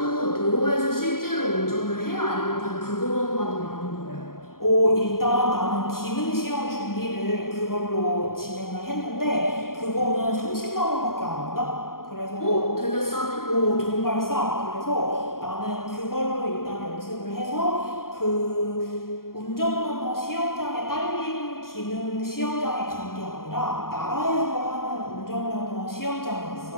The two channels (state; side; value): late; right; 0.92 ms